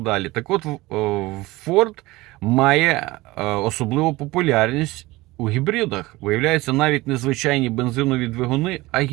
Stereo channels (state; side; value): quieter; left; 20.1 dB